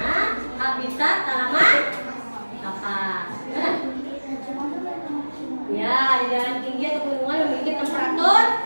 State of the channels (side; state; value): both; inverted; correlation -1.00